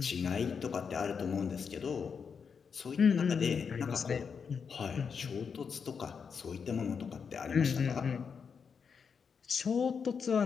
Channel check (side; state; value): right; quieter; 6.2 dB